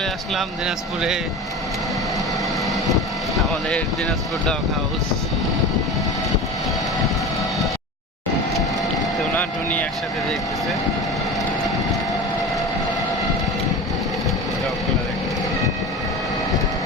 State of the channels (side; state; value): both; normal; correlation 0.31